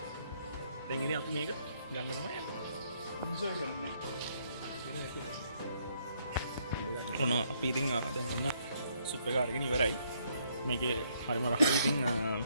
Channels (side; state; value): both; inverted; correlation -0.70